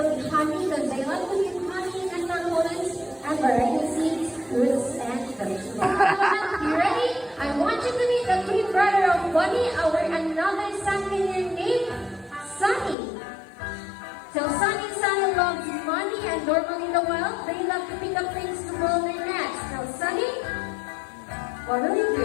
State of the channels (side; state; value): right; drops out; at 13.0 s